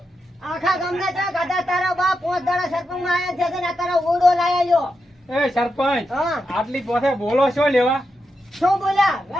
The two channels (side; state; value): both; normal; correlation 0.86